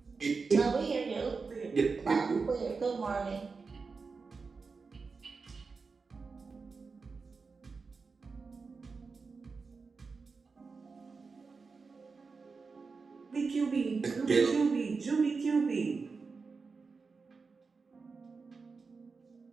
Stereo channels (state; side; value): quieter; left; 4.6 dB